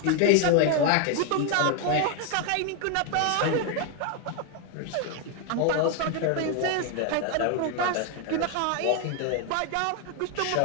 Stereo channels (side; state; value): both; different; correlation 0.01